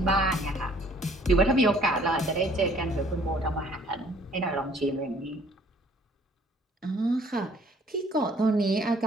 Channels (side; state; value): both; normal; correlation 0.58